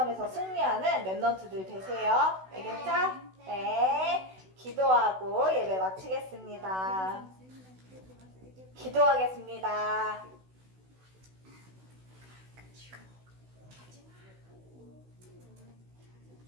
승리하는 랩런트들 되세요. 알겠죠? 네. 기도하고 예배 마치겠습니다. 기도하겠습니다.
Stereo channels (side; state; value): left; late; 16 ms